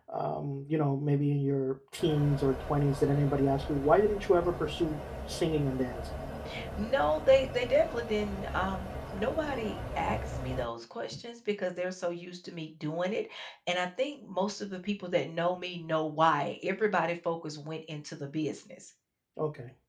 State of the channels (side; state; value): both; identical; correlation 1.00